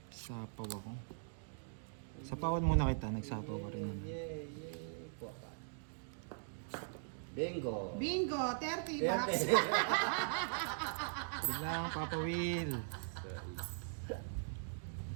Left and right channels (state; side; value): silent; left; digital silence